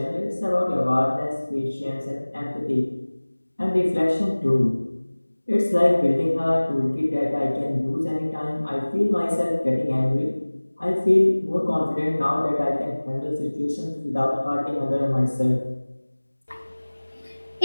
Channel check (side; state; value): both; inverted; correlation -1.00